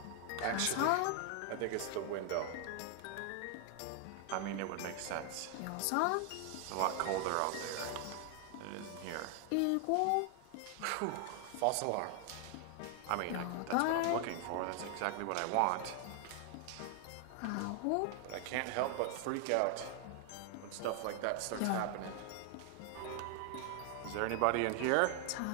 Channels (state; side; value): different; both; correlation 0.00